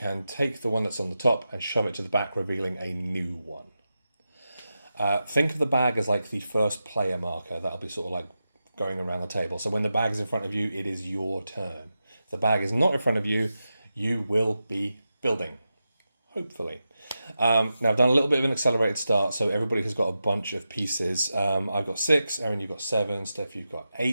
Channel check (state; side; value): inverted; both; correlation -0.90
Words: take the one that's on the top and shove it to the back, revealing a new one. Think of the bag as like the first player marker. That'll be sort of like going around the table. So when the bag is in front of you, it is your turn. If the bag is not in front of you, you will be building, hopefully. Now I've done a little bit of an accelerated start, so everybody has got a bunch of pieces. I've got 6, Erin, you've got 7, Steph, you've got